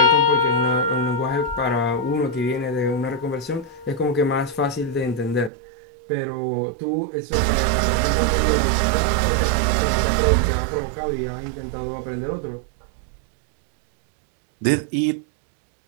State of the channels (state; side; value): drops out; left; at 5.5 s